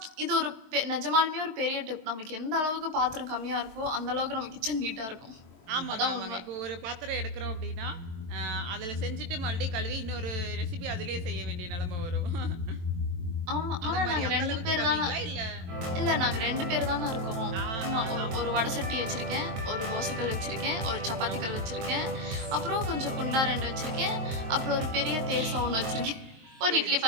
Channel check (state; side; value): late; left; 22 ms